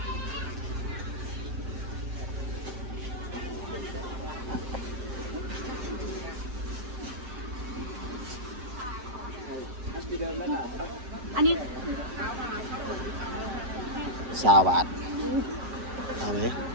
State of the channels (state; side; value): late; left; 7.6 ms